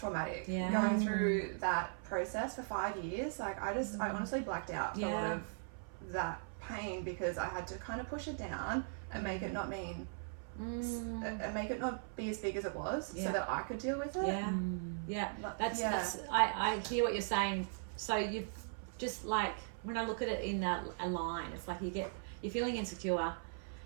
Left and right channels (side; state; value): left; silent; 52 dB below the other